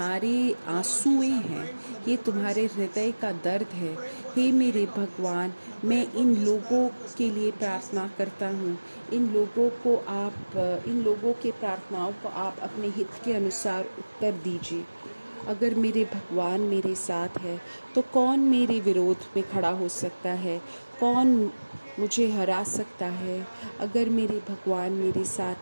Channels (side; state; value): both; inverted; correlation -1.00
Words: आंसुएं हैं, ये तुम्हारे हृदय का दर्द है। हे मेरे भगवान, मैं इन लोगों के लिए प्रार्थना करता हूँ। इन लोगों के प्रार्थनाओं को आप अपने हित के अनुसार उत्तर दीजिए। अगर मेरे भगवान मेरे साथ है तो कौन मेरे विरोध में खड़ा हो सकता है? कौन मुझे हरा सकता है? अगर मेरे भगवान मेरे